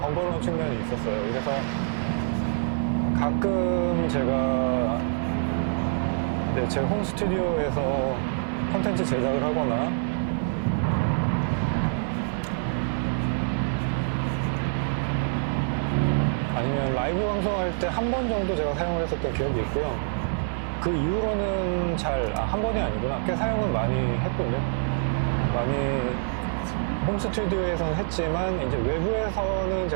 측면이 있었어요. 그래서 가끔 제가 제 홈 스튜디오에서 콘텐츠 제작을 하거나 아니면 라이브 방송할 때 한 번 정도 제가 사용을 했었던 기억이 있고요. 그 이후로는 한 번이 아니구나. 꽤 사용은 많이 했군요. 많이 홈 스튜디오에서는 했지만, 이제 외부에서는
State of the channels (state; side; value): silent; left; digital silence